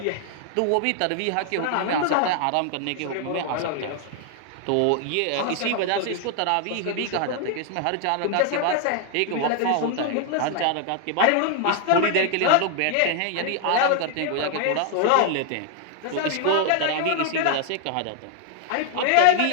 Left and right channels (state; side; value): different; both; correlation 0.00